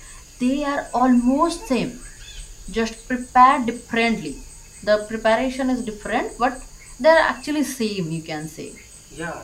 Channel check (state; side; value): identical; both; correlation 1.00